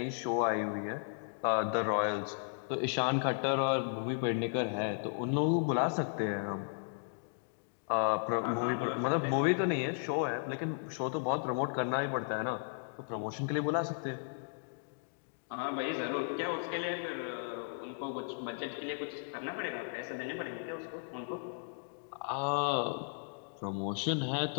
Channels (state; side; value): silent; right; digital silence